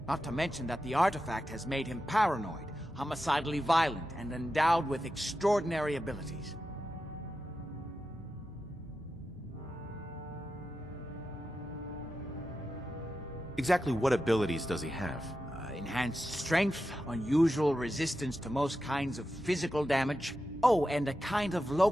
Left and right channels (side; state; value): left; noise; rumble, 28 dB below the sound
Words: Not to mention that the artifact has made him paranoid, homicidally violent, and endowed with extraordinary abilities. Exactly what abilities does he have? Enhanced strength, unusual resistance to most kinds of physical damage. Oh, and a kind of